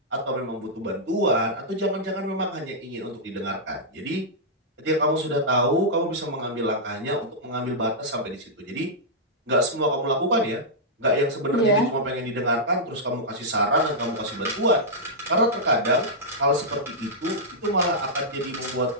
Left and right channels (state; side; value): normal; both; correlation -0.10